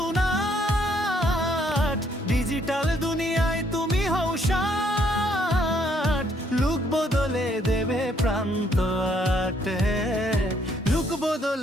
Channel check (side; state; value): both; normal; correlation 0.68